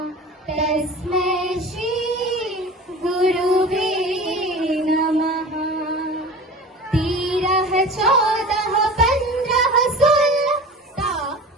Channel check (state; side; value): normal; both; correlation 0.37